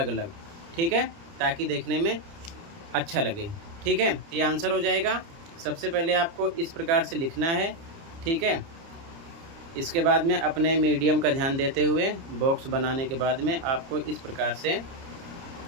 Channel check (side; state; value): left; late; 30 ms